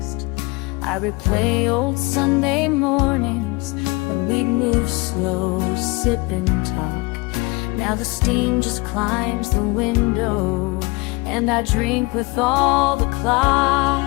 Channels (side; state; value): right; quieter; 25.2 dB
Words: I replay old Sunday mornings when we'd move slow, sip and talk. Now the steam just climbs the window, and I drink with all the